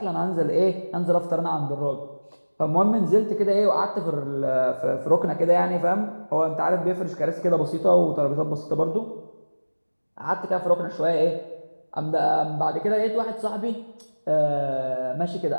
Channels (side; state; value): both; inverted; correlation -1.00